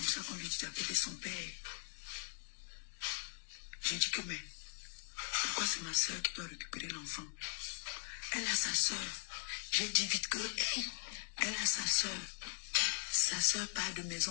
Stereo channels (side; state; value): right; silent; 51 dB below the other